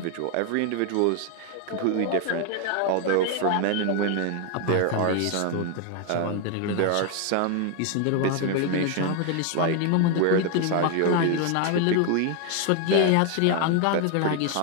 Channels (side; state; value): both; different; correlation 0.01